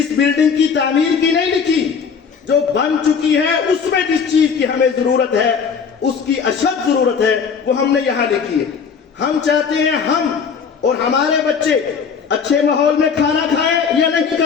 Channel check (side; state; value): right; quieter; 6.2 dB